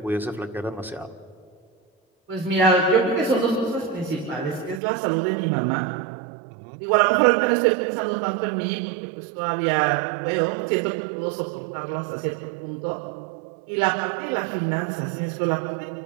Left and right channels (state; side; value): drops out; left; at 4.8 s